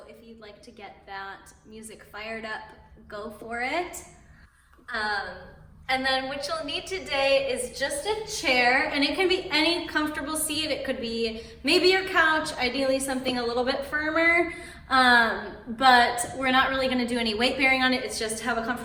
if you'd like to get that music fired up, go for it. And then what you'll need today is just a chair, and it can be any comfortable seat. It could be maybe your couch, ideally something a little bit firmer, but we're not really gonna do any weight bearing on it. It's just have a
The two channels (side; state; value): both; identical; correlation 1.00